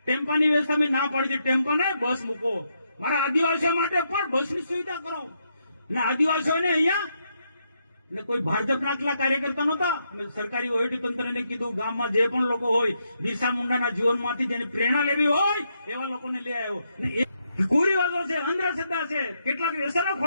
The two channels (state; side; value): inverted; both; correlation -0.79